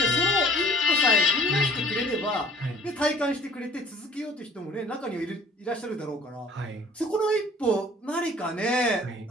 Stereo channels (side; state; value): both; normal; correlation 0.51